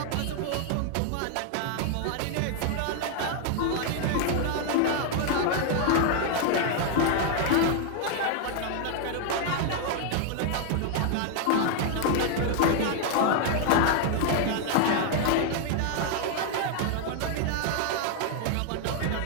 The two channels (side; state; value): both; different; correlation 0.00